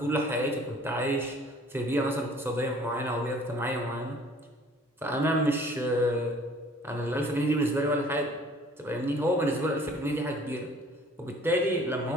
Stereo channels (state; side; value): normal; both; correlation 0.53